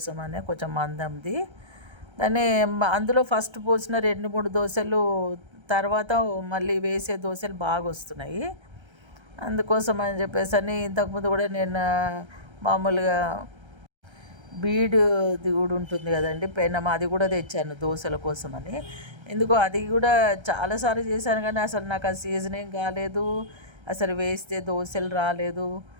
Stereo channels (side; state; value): left; late; 1.3 ms